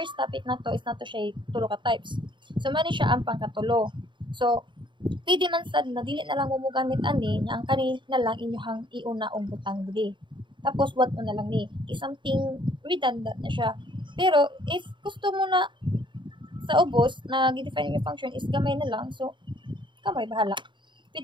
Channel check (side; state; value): left; late; 0.23 ms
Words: topic na to is na to siya tulo ka types. So mani siya ang pangkatulo. So pwede man sad na dili na lang mo gamit ani nga ang kani na lang inyohang iuna og butang dili. Tapos what na lang ni, something redundant na siya. Pero if gusto mo na sa ubos na gi-define yung function is gamay na lang, so kamay bahala.